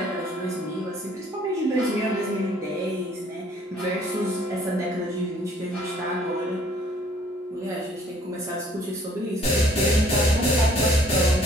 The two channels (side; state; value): both; normal; correlation 0.59